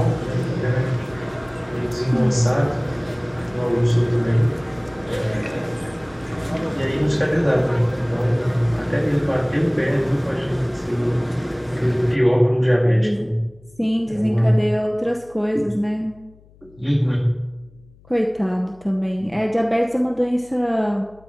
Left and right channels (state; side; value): noise; left; hum, 27 dB below the sound